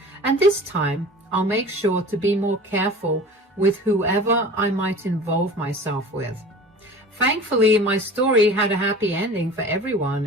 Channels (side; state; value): both; normal; correlation 0.40